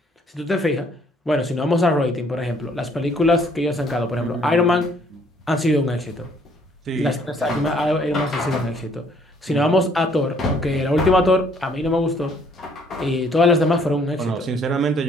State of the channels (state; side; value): normal; both; correlation 0.63